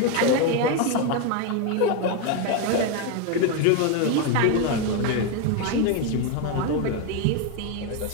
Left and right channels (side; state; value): both; different; correlation 0.02